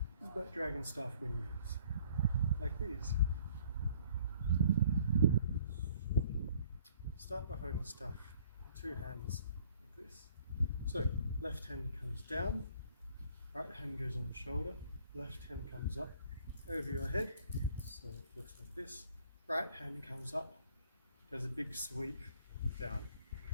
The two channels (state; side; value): inverted; both; correlation -0.58